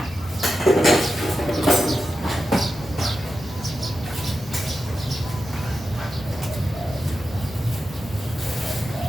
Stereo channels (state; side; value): normal; both; correlation 0.90